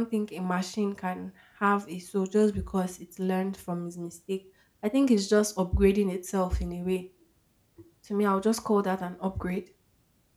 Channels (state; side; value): identical; both; correlation 1.00